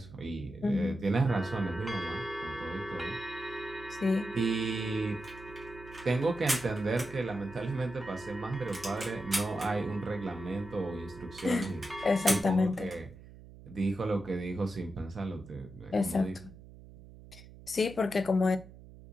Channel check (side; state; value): right; noise; hum, 18 dB below the sound